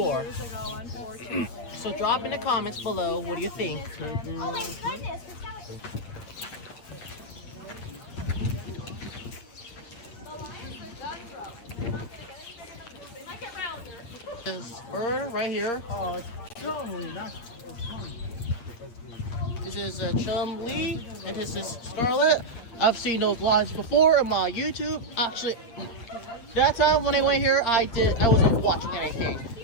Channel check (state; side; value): late; right; 8.5 ms